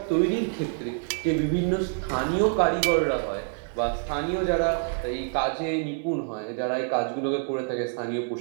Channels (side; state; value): left; silent; 60 dB below the other